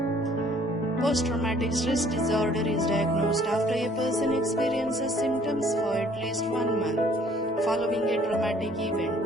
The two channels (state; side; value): normal; both; correlation 0.58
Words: Post-traumatic stress disorder is diagnosed after a person experiences symptoms for at least 1 month following a traumatic event.